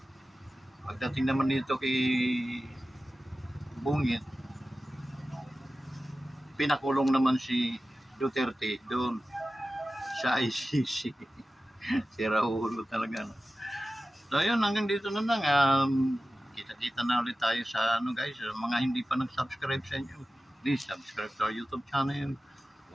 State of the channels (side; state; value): both; normal; correlation 0.95